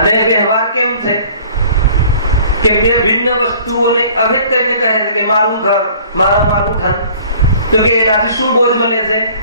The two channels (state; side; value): inverted; both; correlation -0.51